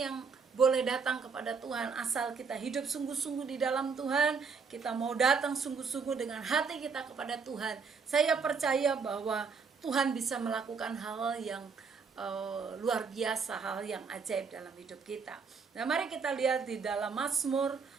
yang boleh datang kepada Tuhan, asal kita hidup sungguh-sungguh di dalam Tuhan, kita mau datang sungguh-sungguh dengan hati kita kepada Tuhan. Saya percaya bahwa Tuhan bisa melakukan hal yang luar biasa, hal yang ajaib dalam hidup kita. Nah, mari kita lihat di dalam Mazmur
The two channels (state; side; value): quieter; left; 5.3 dB